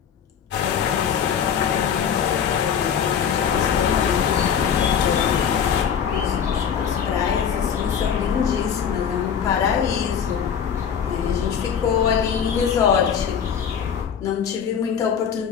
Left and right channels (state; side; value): quieter; right; 7.8 dB